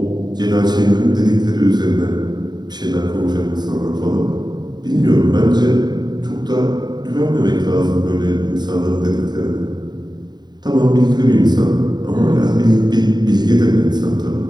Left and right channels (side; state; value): left; late; 0.20 ms